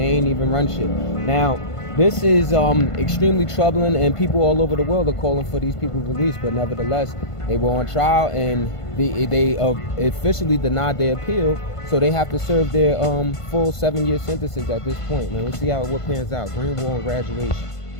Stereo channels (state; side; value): late; right; 1.5 ms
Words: ain't even run shit. Now, this is extremely troubling, and people all over the world are calling for these people released. But nevertheless, they were on trial, and they officially denied their appeal, so they have to serve their full 7-year sentences at this point. Man, we'll see how it pans out. Green Wall and graduation.